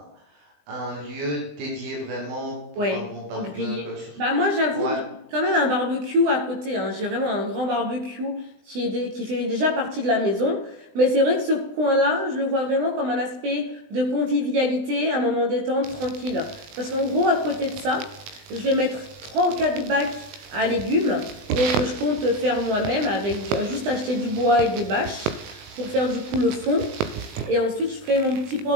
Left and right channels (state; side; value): late; left; 20 ms